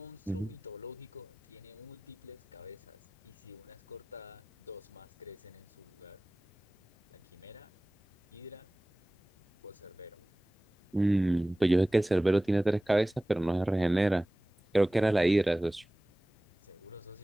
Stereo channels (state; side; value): normal; both; correlation 0.98